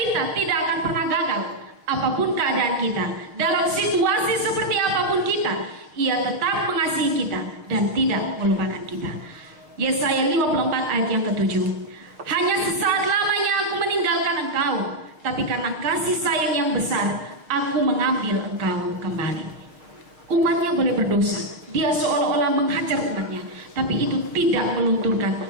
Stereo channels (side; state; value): left; late; 6.6 ms